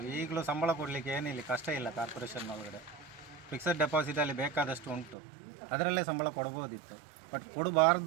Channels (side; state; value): left; drops out; at 5.2 s